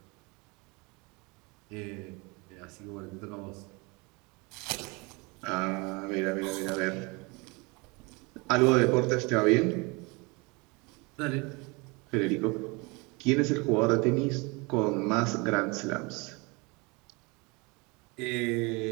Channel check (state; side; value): quieter; left; 27.6 dB